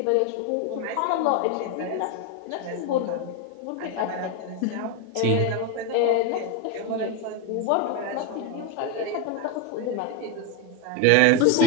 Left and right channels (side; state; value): both; different; correlation 0.02